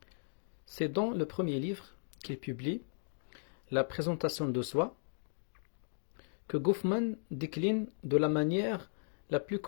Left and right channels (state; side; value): silent; right; digital silence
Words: C'est dans le premier livre qu'il publie, La présentation de soi, que Goffman décline de la manière la plus